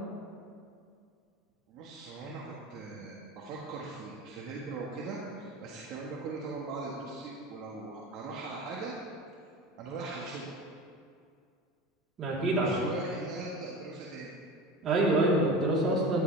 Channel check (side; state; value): both; normal; correlation 0.32